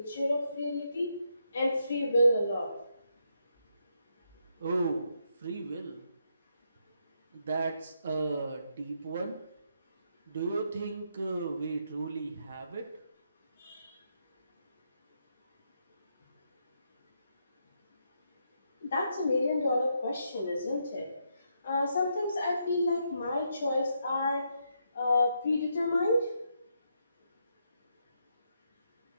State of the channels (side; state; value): both; inverted; correlation -0.79